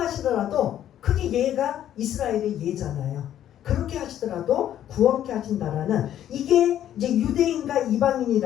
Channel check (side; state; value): right; quieter; 11.2 dB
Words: 그게 예가 이스라엘의 예잖아요. 그렇게 하시더라도 구원케 하신다라는 이게 이제 유대인과